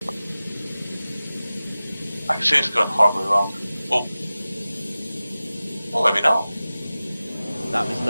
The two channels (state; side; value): inverted; both; correlation -0.97